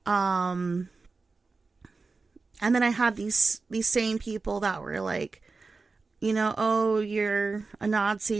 And then I had these same people that were like, oh, you're a Nazi,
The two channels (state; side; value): quieter; left; 4.1 dB